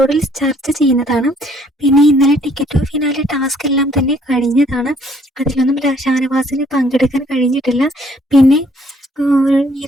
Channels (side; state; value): both; normal; correlation 0.63